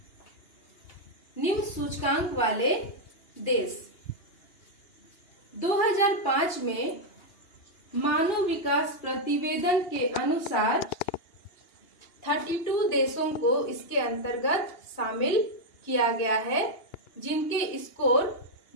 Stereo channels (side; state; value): right; late; 2.8 ms